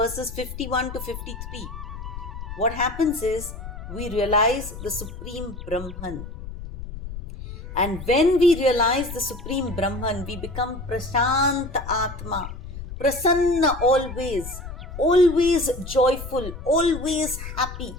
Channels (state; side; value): noise; left; rumble, 10 dB below the sound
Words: 51 to 53, what happens is we realize the Supreme Brahman. And when we realize the Supreme Brahman, we become Prashant Atma, Prasanna always, always joyful, always happy.